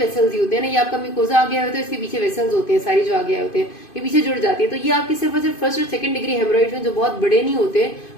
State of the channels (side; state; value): right; late; 2.5 ms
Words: ही होते हैं ना, ये आपका म्यूकोजा आ गया होता है, इसके पीछे वेसल्स होते हैं, सारी जो आगे आए होते हैं ये पीछे जुड़ जाती है। तो ये आपकी सिर्फ और सिर्फ फर्स्ट और सेकंड डिग्री हेमोरॉइड्स में जो बहुत बड़े नहीं होते